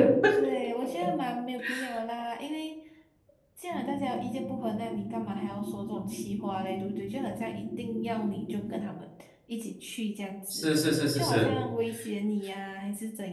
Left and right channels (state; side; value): identical; both; correlation 1.00